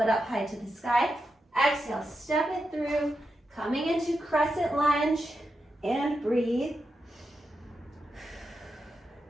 up high to the sky. Exhale, step it through, coming into crescent lunge, and breathe.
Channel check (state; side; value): normal; both; correlation 0.87